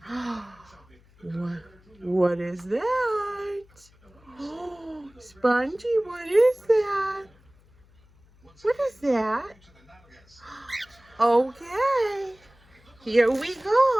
What is that? Oh, Spongy, what is that? What is that? Okay, here we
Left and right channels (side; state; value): left; noise; hum, 29 dB below the sound